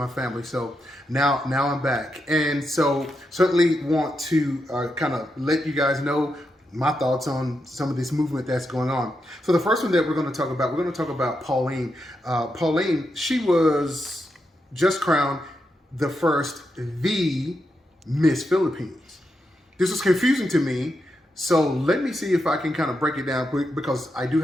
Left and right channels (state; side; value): normal; both; correlation 0.85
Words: family, so now I'm back, and so certainly want to kind of let you guys know my thoughts on some of this movement that's going on. So the first one that we're going to talk about Pauline. Pauline, she was just crowned the first Miss Philippines. This was confusing to me, so let me see if I can kind of break it down quick, because I do